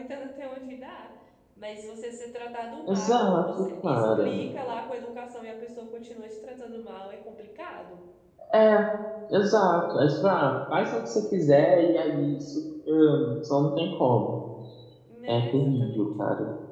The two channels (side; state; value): both; identical; correlation 1.00